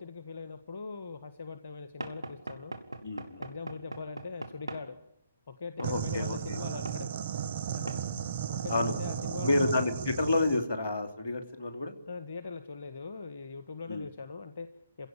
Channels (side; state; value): both; inverted; correlation -0.73